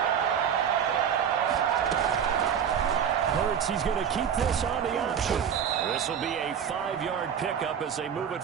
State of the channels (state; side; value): quieter; left; 8.1 dB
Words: He's going to keep this on the option. This will be a 5-yard pickup as they move it